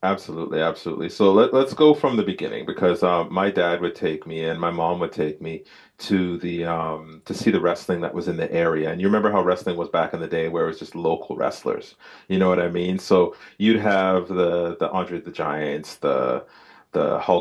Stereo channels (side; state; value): both; identical; correlation 1.00